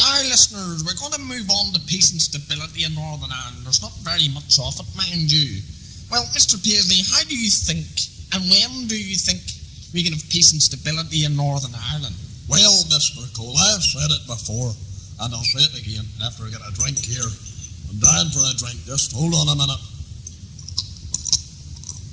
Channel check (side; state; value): both; identical; correlation 1.00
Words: Listeners, we're going to move on to peace and stability in Northern Ireland. There's not very much of it, mind you. Well, Mr. Paisley, how do you think, and when do you think we can have peace and stability in Northern Ireland? Well, Mr. Cole, I've said it before, and I'll say it again after I get a drink here. I'm dying for a drink. Just hold on a minute.